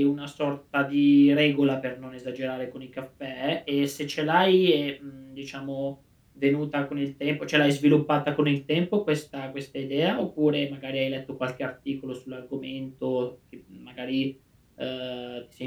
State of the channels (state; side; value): identical; both; correlation 1.00